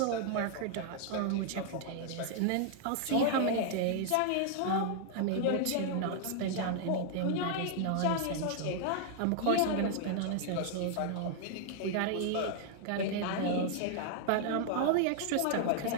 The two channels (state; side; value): different; both; correlation -0.01